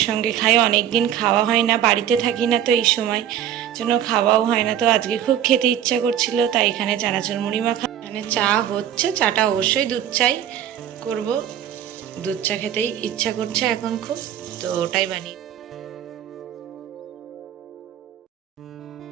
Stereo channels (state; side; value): quieter; left; 10.3 dB